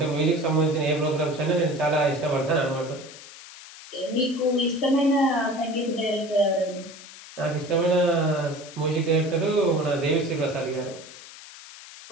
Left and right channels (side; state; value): left; noise; hiss, 17 dB below the sound